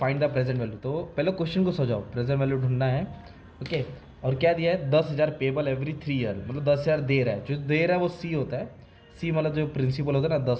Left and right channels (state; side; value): identical; both; correlation 1.00